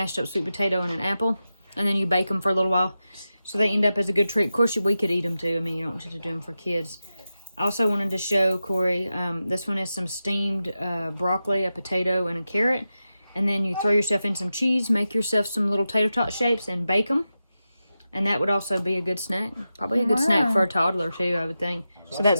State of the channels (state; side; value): inverted; both; correlation -0.92